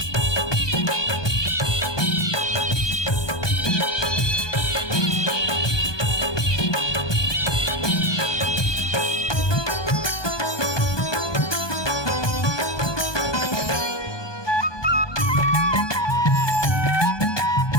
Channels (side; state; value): right; late; 1.2 ms